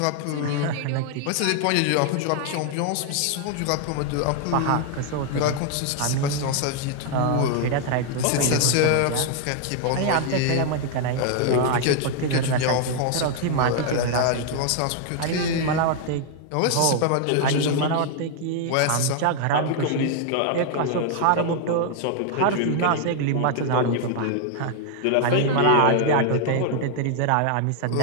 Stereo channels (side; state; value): both; different; correlation 0.00